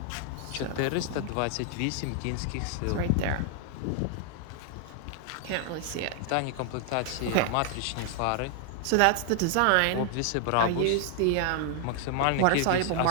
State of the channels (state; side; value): different; both; correlation 0.00